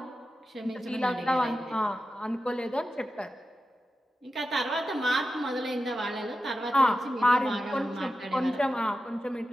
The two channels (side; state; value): both; normal; correlation 0.92